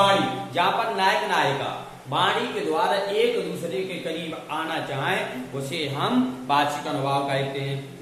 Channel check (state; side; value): identical; both; correlation 1.00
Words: जहां पर नायक नायिका वाणी के द्वारा एक दूसरे के करीब आना चाहें उसे हम वाचिक अनुभाव कहते हैं।